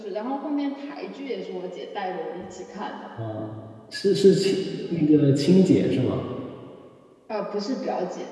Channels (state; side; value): identical; both; correlation 1.00